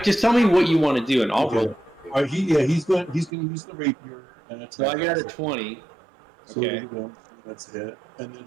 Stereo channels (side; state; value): left; drops out; at 3.3 s